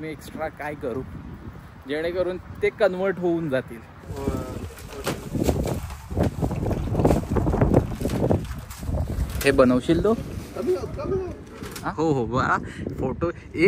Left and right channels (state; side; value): identical; both; correlation 1.00